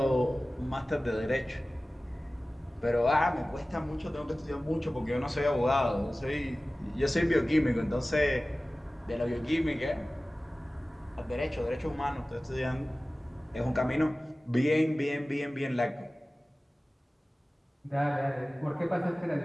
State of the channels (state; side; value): normal; both; correlation 0.97